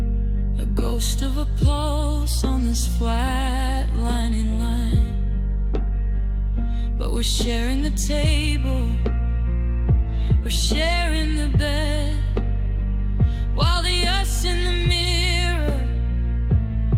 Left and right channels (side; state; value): both; identical; correlation 1.00